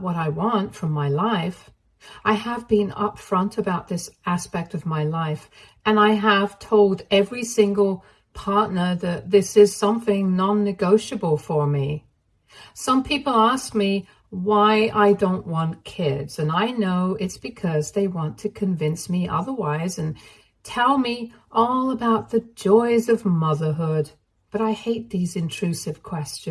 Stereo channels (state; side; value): identical; both; correlation 1.00